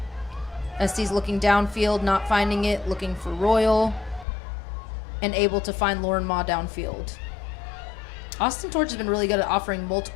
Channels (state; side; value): drops out; right; at 4.2 s